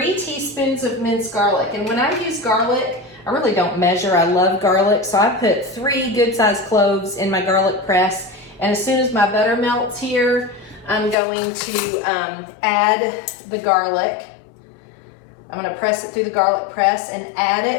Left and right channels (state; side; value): drops out; right; at 11.2 s